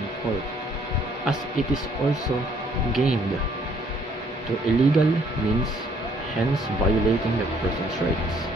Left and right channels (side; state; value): both; normal; correlation 0.64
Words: court, as it is also gained through illegal means, hence violating that person's rights.